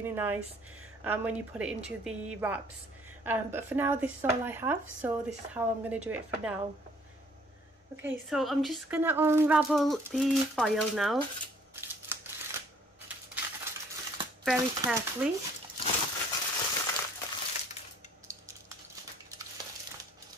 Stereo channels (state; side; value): normal; both; correlation 0.59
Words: nice when you put it into the wraps. But for now this is all I have, so this is how I'm going to do it for now. Okay, so I'm just going to unravel the foil now, very carefully.